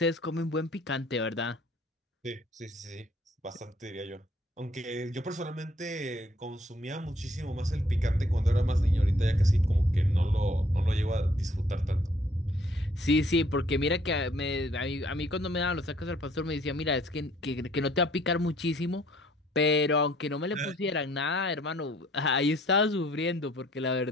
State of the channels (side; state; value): both; normal; correlation 0.62